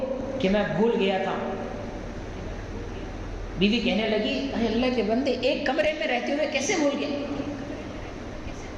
کہ میں بھول گیا تھا۔ بیوی کہنے لگی، اے اللہ کے بندے، ایک کمرے میں رہتے ہوئے کیسے بھول گئے؟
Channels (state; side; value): identical; both; correlation 1.00